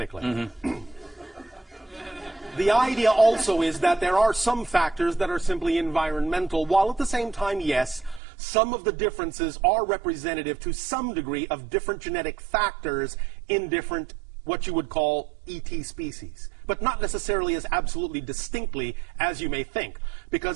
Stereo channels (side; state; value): left; drops out; at 8.2 s